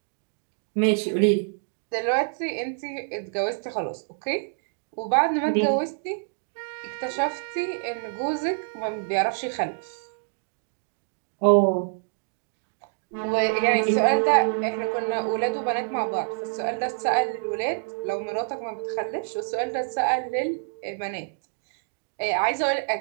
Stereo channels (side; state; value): left; silent; digital silence